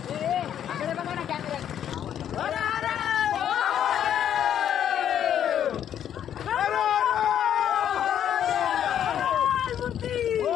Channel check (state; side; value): quieter; right; 9.8 dB